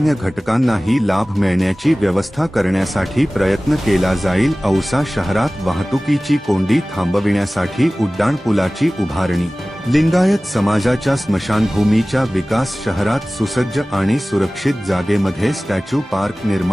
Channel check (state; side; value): normal; both; correlation 0.98